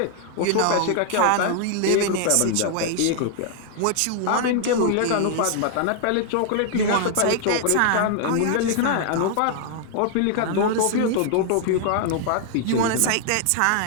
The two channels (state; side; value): different; both; correlation 0.00